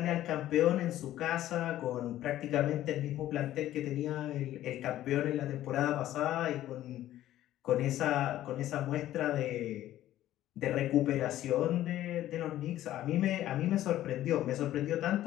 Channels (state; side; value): quieter; right; 13.5 dB